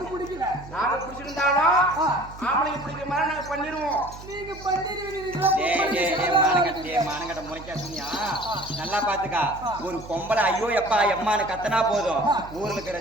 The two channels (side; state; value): right; noise; hum, 16 dB below the sound